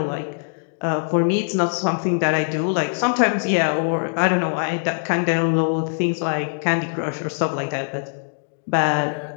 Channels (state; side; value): silent; right; digital silence